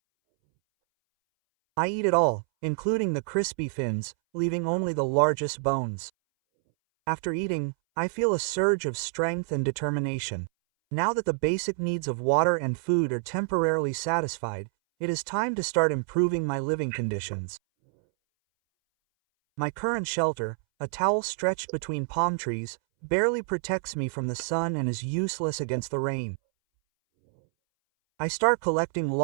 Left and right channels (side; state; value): left; silent; 60 dB below the other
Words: I eat it all, including the crispy fins, leaving only the largest bones. After eating, I feel a surge of strength and determination. Now that the basic needs of water and food are temporarily satisfied, it is time to start improving my living conditions. My current shelter, a towel stretched between palm trees, barely protects me from the sun and is useless against the rain. I start collecting